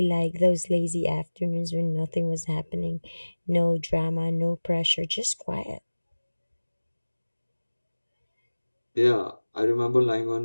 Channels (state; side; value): inverted; both; correlation -1.00